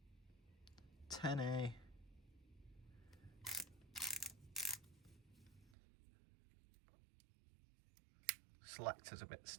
10A. Selector's a bit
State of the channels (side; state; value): left; drops out; at 5.8 s